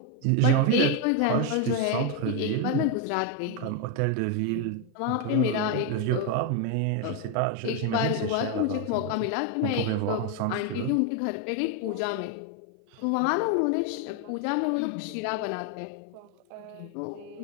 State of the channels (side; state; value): both; different; correlation 0.01